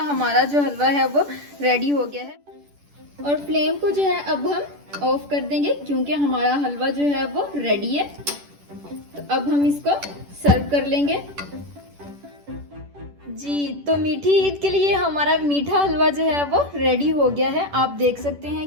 हमारा जो हलवा है वो रेडी हो गया है। और फ्लेम को जो है अब हम ऑफ कर देंगे क्योंकि हमारा हलवा जो है वो रेडी है। तो अब हम इसको सर्व कर लेंगे जी। तो मीठी ईद के लिए हमारा मीठा हलवा जो है वो रेडी हो गया है। आप देख सकते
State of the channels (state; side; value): late; left; 10 ms